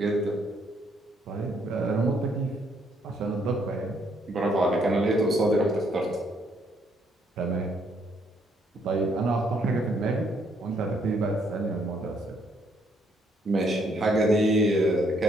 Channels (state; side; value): normal; both; correlation 0.70